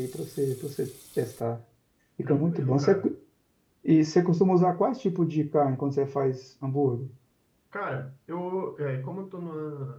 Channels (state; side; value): identical; both; correlation 1.00